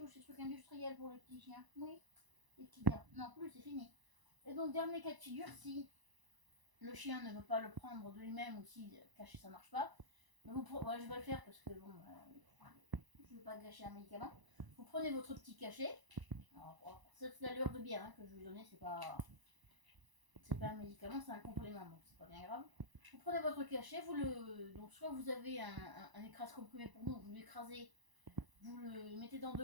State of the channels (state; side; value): late; left; 1.0 ms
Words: ces trucs industriels pour les petits chiens. Oui, les petits gars. Non plus, c'est fini. Et donc dernier cas de figure, si le chien ne veut pas le prendre de lui-même ou si caché ça marche pas, ouais, je vais le faire parce que bon, je veux pas gâcher un médicament. Vous prenez votre petit cachet. Alors, c'est l'allure de bière hein, que je vais donner, c'est pas un médicament, c'est un complément, donc c'est pas bien grave. Vous prenez votre cachet, donc soit vous avez un écrase comprimé pour nous, vous l'écrasez, vous le mettez dans de